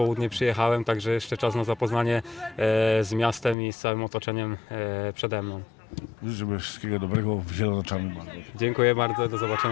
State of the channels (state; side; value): drops out; right; at 3.6 s